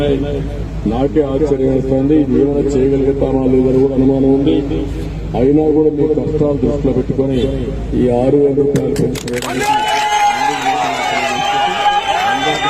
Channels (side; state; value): both; identical; correlation 1.00